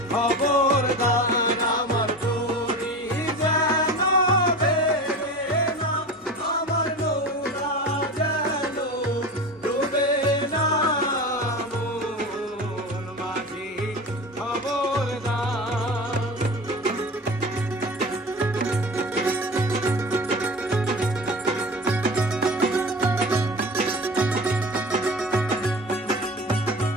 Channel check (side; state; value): both; normal; correlation 0.32